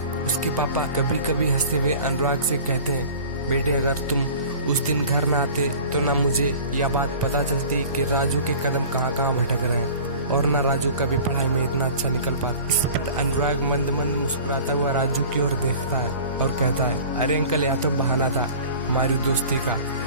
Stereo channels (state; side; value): inverted; both; correlation -0.42